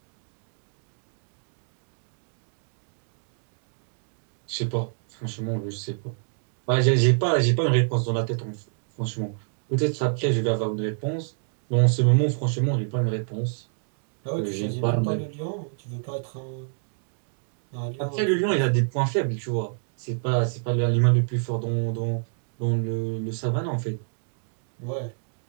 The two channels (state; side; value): silent; left; digital silence